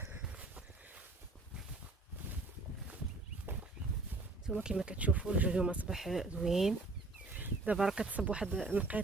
نتوما كما كتشوفوا الجو اليوم اصبح زوين. دابا راه كتصب واحد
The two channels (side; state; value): left; quieter; 3.2 dB